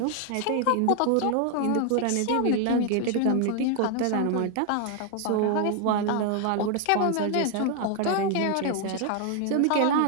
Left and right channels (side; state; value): both; different; correlation 0.00